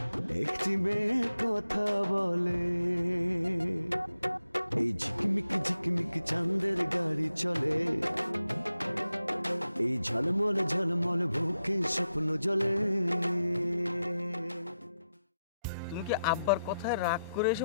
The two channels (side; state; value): both; inverted; correlation -0.88